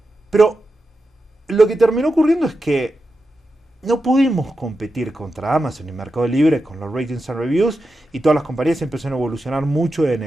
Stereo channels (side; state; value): both; normal; correlation 0.90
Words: Pero lo que terminó ocurriendo es que no pudimos competir contra Amazon y Mercado Libre con los ratings and reviews, y todas las compañías empezaron a evolucionar mucho en